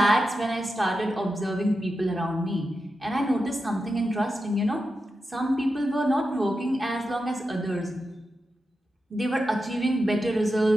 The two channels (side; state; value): both; normal; correlation 0.89